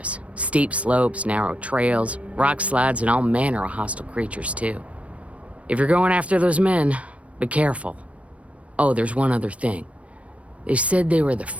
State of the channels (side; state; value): left; late; 0.064 ms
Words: Steep slopes, narrow trails, rock slides, and all manner of hostile creatures, too. If you're going after those men, be careful. Oh, there's one other thing. They said they were the